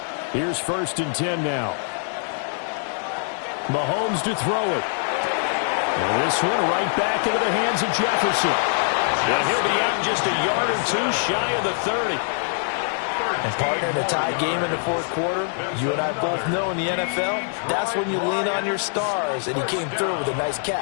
Here's 1st and 10 now. Mahomes to throw it. And this one right back into the hands of Jefferson. And he'll be out just a yard or 2 shy of the 30. And partner, in a tie game in the 4th quarter, you and I both know in the NFL, that's when you lean on your stars, and he came through with a nice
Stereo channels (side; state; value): right; silent; digital silence